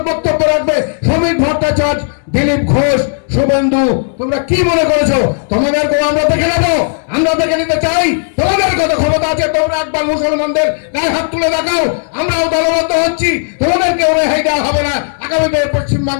বক্তব্য রাখবে। শ্রমিক ভট্টাচার্য, দিলীপ ঘোষ, শুভেন্দু, তোমরা কি মনে করেছো? তোমাদেরকেও আমরা দেখে নেবো, আমরা দেখে নিতে চাই। তোমাদের কত ক্ষমতা আছে, তোমরা একবার মুসলমানদের গায়ে হাত তুলে দেখাও। আমরাও দলবদ্ধ হচ্ছি, তোমাদেরকেও রেহাই দেওয়া হবে না। আগামীতে পশ্চিম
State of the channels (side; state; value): right; silent; 71 dB below the other